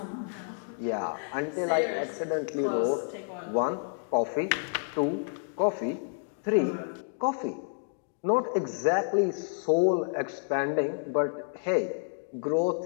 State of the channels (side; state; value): right; silent; digital silence